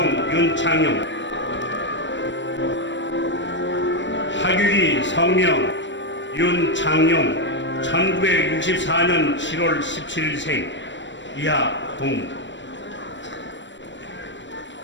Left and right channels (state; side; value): late; right; 0.53 ms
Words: 윤창용. 학위기 성명 윤창용 1964년 7월 17일생 이하 동.